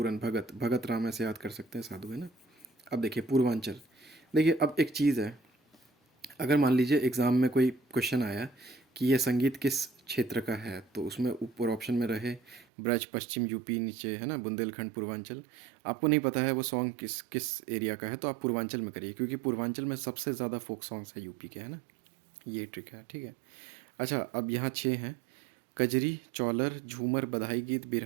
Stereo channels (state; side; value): drops out; left; at 12.7 s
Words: भगत, भगत राम ऐसे याद कर सकते हैं, साधु, है ना। अब देखिए पूर्वांचल, देखिए अब एक चीज़ है, अगर मान लीजिए एग्ज़ाम में कोई क्वेश्चन आया कि ये संगीत किस क्षेत्र का है, तो उसमें ऊपर ऑप्शन में रहे ब्रज पश्चिम यूपी, नीचे है ना बुंदेलखंड पूर्वांचल, आपको नहीं पता है वो सॉन्ग किस किस एरिया का है, तो आप पूर्वांचल में करिए, क्योंकि पूर्वांचल में सबसे ज़्यादा फोक सॉन्ग्स है यूपी के, है ना। ये ट्रिक है। ठीक है, अच्छा अब यहाँ छः हैं: कजरी, चौलर, झूमर, बधाई गीत,